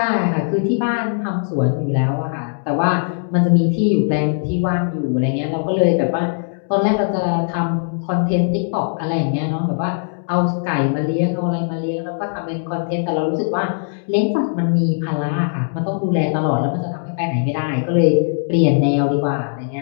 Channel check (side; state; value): right; silent; digital silence